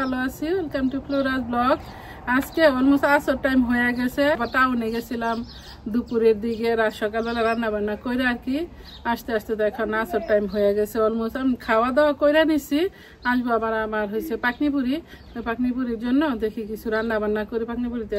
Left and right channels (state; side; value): identical; both; correlation 1.00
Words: আছি। Welcome to Flora's blog. আজকে অলমোস্ট আসর টাইম হয়ে গেছে। টাউনে গেছিলাম দুপুরের দিকে, রাত সকালবেলা রান্না বান্না করে আর কি আস্তে আস্তে তো এখন আসর টাইম হয়ে গেছে। অলমোস্ট আমি খাওয়া দাওয়া করে নিছি। আসবো আবার আমার হয়েছে পাকনিপুরি। পাকনিপুরির জন্য দেখি কিছু রান্না বান্না করে পাকনিপুরিতে